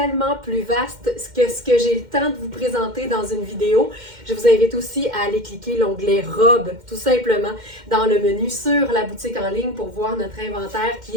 plus vaste que ce que j'ai le temps de vous présenter dans une vidéo. Je vous invite aussi à aller cliquer l'onglet Robe, tout simplement, dans le menu sur la boutique en ligne pour voir notre inventaire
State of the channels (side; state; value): left; late; 2.1 ms